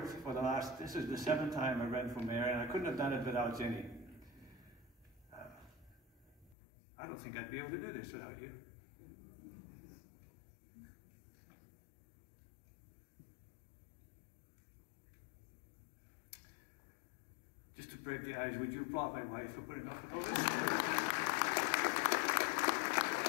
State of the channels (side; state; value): right; drops out; at 6.6 s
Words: for the last, this is the 7th time I ran for mayor, and I couldn't have done it without Jenny. I don't think I'd be able to do this without you. Just to break the ice, would you applaud my wife for putting up with all this?